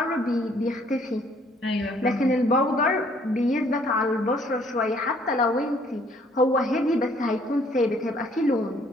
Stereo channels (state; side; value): normal; both; correlation 0.62